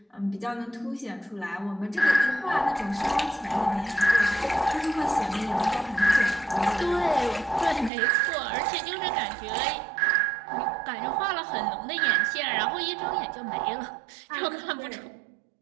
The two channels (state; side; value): drops out; left; at 7.9 s